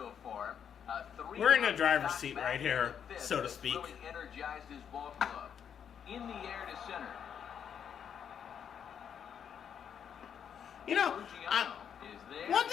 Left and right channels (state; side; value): quieter; right; 8.1 dB